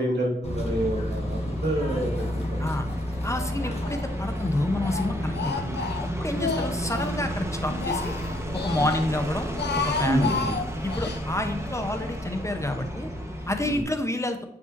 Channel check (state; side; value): normal; both; correlation 0.68